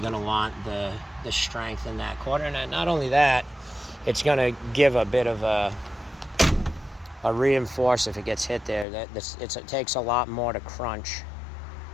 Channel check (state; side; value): drops out; right; at 8.8 s